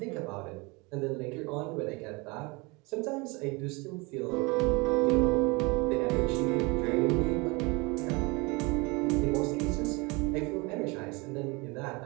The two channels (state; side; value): quieter; left; 26.8 dB